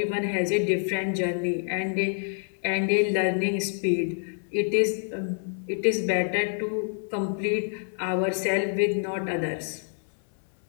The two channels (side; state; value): right; silent; 60 dB below the other